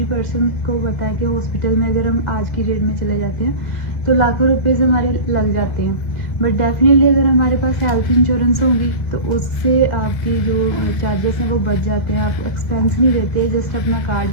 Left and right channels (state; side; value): late; right; 2.0 ms